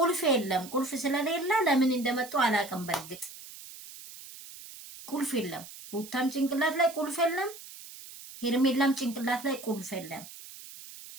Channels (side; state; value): right; noise; hiss, 15 dB below the sound